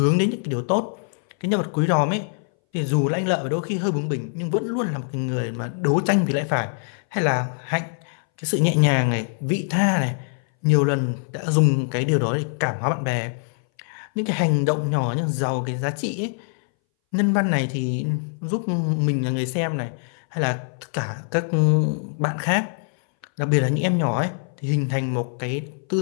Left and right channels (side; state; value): right; silent; 61 dB below the other